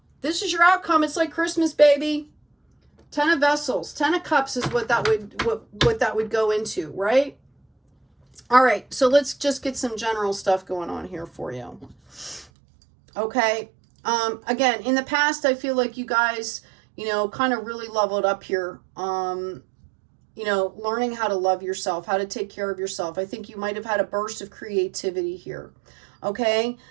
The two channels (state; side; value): drops out; left; at 12.5 s